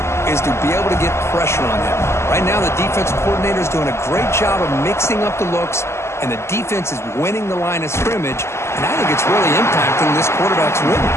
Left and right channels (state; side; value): late; right; 0.13 ms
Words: is to be able to get pressure on him. Right now, the defense coordinator is doing a great job of mixing up the looks, and the defense is winning the line of scrimmage, and I think it's really impacting this quarterback's rhythm.